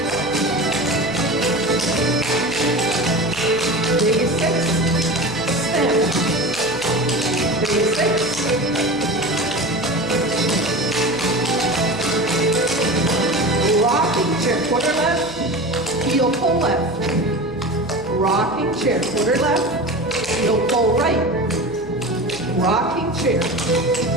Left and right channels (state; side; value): noise; right; hum, 19 dB below the sound